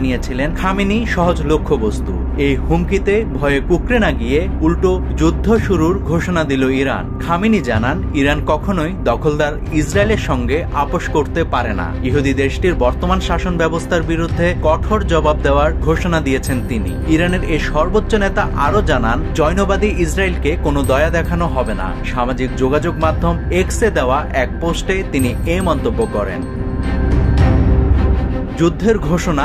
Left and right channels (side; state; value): both; identical; correlation 1.00